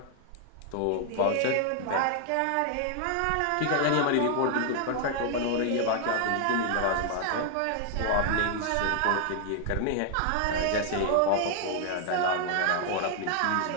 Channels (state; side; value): different; both; correlation 0.00